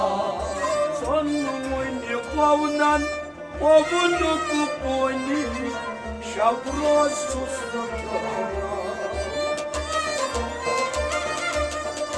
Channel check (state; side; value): identical; both; correlation 1.00